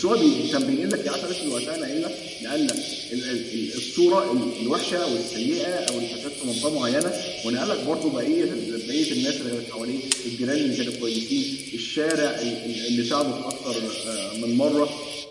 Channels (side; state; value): both; identical; correlation 1.00